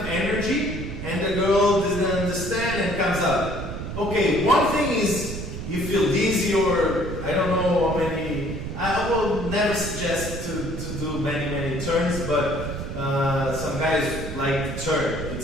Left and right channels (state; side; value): noise; right; rumble, 7 dB below the sound